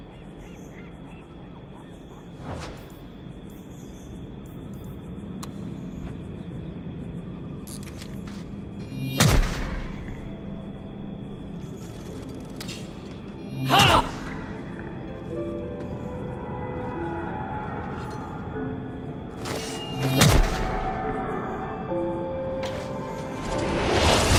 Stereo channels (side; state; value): both; identical; correlation 1.00